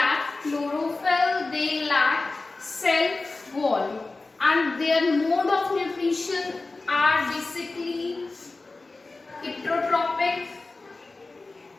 chlorophyll, they lack cell wall, and their mode of nutrition are basically heterotrophic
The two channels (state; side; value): quieter; right; 3.4 dB